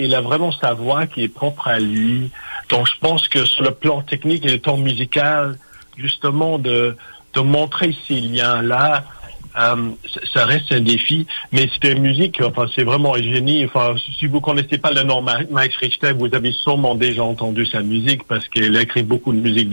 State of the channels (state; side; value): inverted; both; correlation -1.00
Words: a vraiment sa voix qui est propre à lui. Donc, je pense que sur le plan technique et le plan musical, justement, de montrer ces liens-là, ça reste un défi, mais c'est une musique, c'est vraiment un génie. Si vous connaissez pas le nom Max Richter, vous avez sûrement déjà entendu sa musique parce qu'il a écrit beaucoup de musique